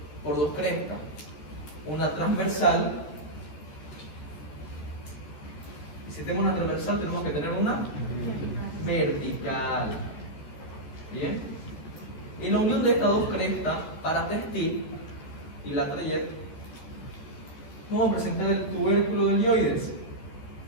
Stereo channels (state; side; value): late; right; 14 ms